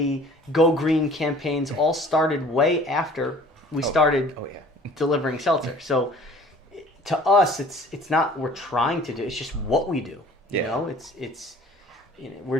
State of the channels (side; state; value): both; normal; correlation 0.50